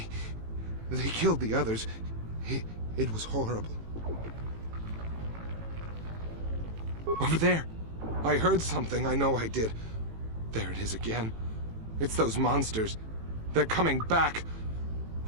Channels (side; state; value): left; late; 18 ms